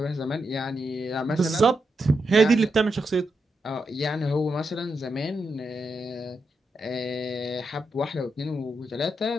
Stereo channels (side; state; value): both; normal; correlation 0.84